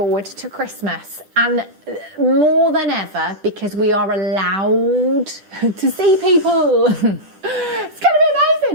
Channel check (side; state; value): left; late; 10 ms